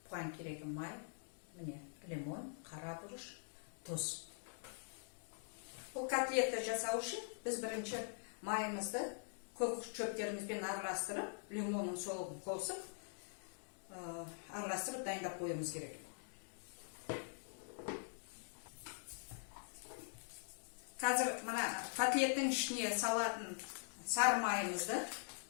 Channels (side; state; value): right; silent; digital silence